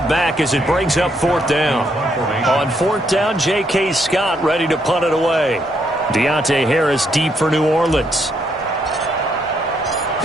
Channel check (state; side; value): normal; both; correlation 0.74